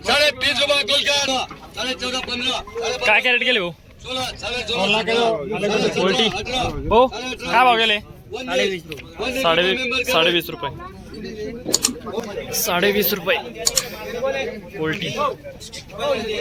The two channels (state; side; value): identical; both; correlation 1.00